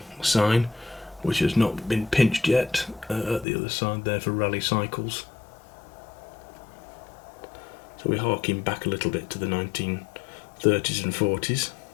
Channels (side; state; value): right; drops out; at 3.5 s